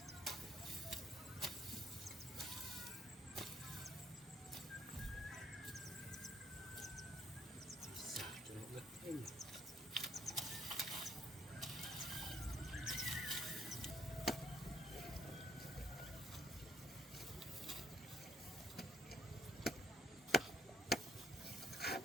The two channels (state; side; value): normal; both; correlation 0.66